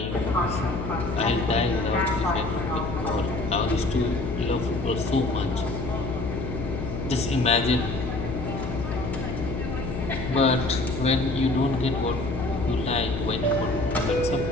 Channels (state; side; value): noise; left; hum, 5 dB below the sound